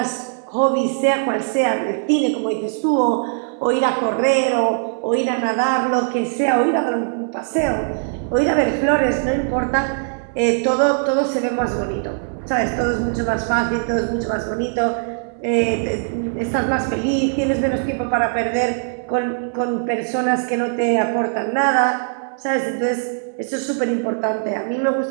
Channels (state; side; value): silent; left; 65 dB below the other